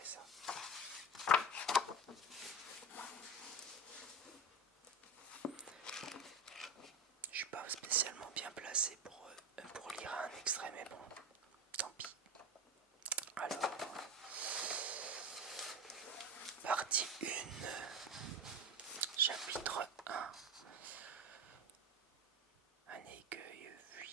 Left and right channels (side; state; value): both; normal; correlation 0.22